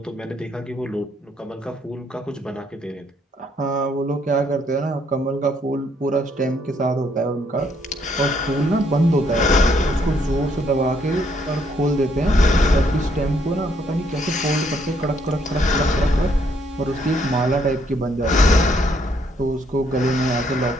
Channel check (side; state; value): both; normal; correlation 0.70